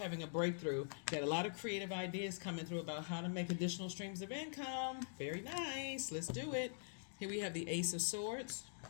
a breakthrough. Got a lot of creative ideas coming through about how to make additional streams of income. Very nice. Let's do it. Here we have the Ace of Swords.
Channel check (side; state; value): right; silent; digital silence